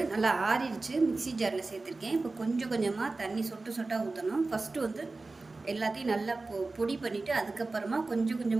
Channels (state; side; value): quieter; left; 3.5 dB